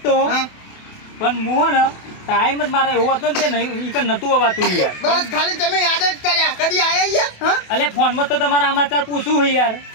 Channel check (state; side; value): late; right; 28 ms